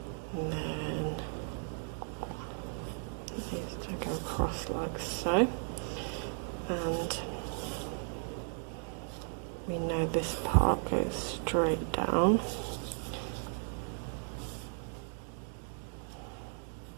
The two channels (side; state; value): left; silent; 54 dB below the other